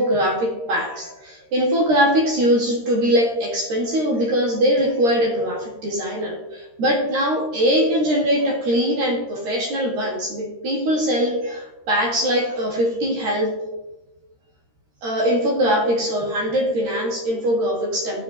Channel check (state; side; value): late; left; 13 ms